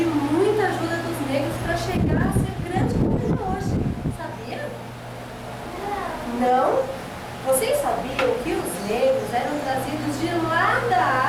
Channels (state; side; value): identical; both; correlation 1.00